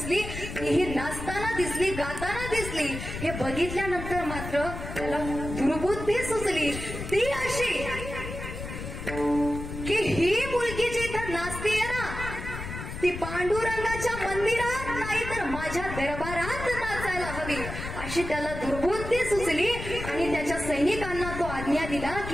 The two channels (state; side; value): noise; left; rumble, 8 dB below the sound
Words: ही नाचताना दिसली, गाताना दिसली. हे बघितल्यानंतर मात्र त्याला दुर्बुद्धी सुचली. ती अशी की ही मुलगी जी इथं नाचतीये ना, ती पांडुरंगाच्या मंदिरात नाही तर माझ्या दरबारात नाचायला हवी, अशी त्याला दुर्बुद्धी सुचली. आणि त्याच्या सैनिकांना तो आज्ञा दिला